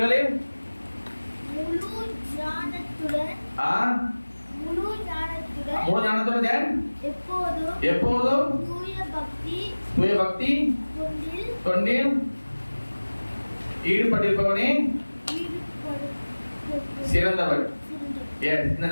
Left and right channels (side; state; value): both; inverted; correlation -1.00